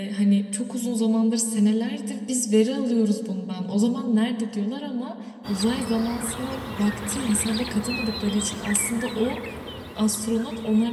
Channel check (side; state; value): both; identical; correlation 1.00